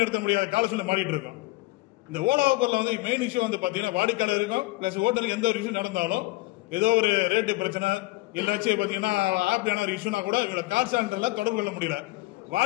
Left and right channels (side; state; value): right; quieter; 20.6 dB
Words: முடியாத கால சூழ்நிலை மாறிட்டு இருக்கோம். இந்த ஓலா ஊபர்ல வந்து மெயின் இஷ்யூ வந்து பாத்தீங்கன்னா வாடிக்கையாளர் இருக்கும் பிளஸ் ஓட்டுநர் எந்த ஒரு விஷயம் நடந்தாலும் ஏதோ ஒரு ரேட்டு பிரச்சனை இல்லாச்சும் பாத்தீங்கன்னா ஆப் என்ன ஒரு இஷ்யூனா கூட இவங்க கால் சென்டர்ல தொடர்பு கொள்ள முடியல.